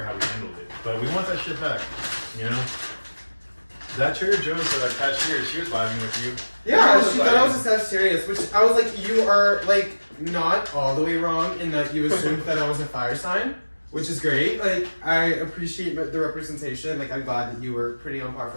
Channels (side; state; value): both; inverted; correlation -1.00